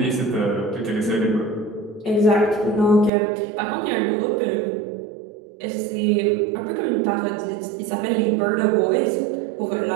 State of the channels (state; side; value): drops out; left; at 3.1 s